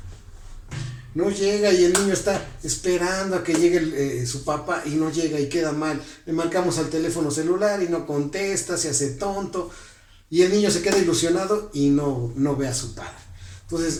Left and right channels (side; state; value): both; identical; correlation 1.00